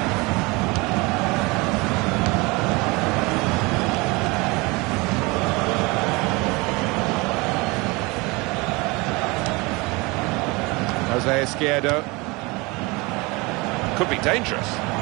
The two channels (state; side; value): quieter; left; 25.1 dB